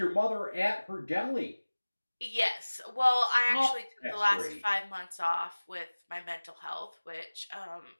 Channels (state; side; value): inverted; both; correlation -1.00